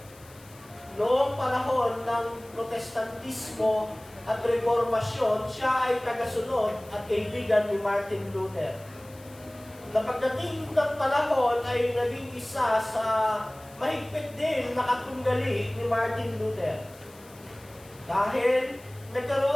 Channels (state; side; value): noise; left; hiss, 24 dB below the sound